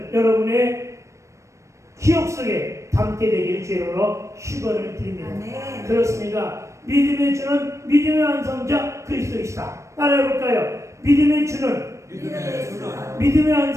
여러분의 기억 속에 담게 되기를 주님으로 축원을 드립니다. 아멘. 그렇습니다. 믿음의 주는 믿음의 완성자 그리스도이시다. 따라해볼까요? 믿음의 주는 믿음의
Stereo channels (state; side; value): late; left; 0.15 ms